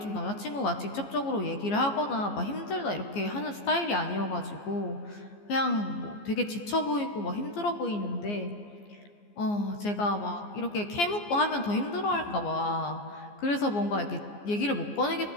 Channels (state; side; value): late; right; 14 ms